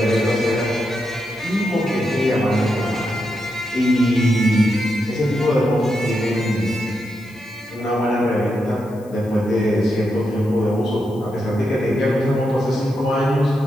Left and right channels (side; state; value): left; noise; hiss, 27 dB below the sound